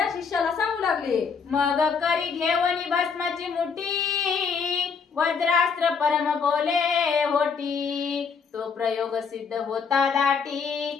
शिष्याला सांगू लागले. मग करी घेवनी भस्माची मुठी वज्रास्त्र परम बोले होती तो प्रयोग सिद्ध होता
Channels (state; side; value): quieter; right; 5.7 dB